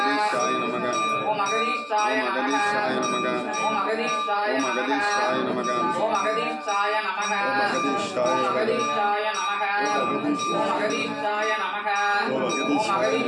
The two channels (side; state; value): both; identical; correlation 1.00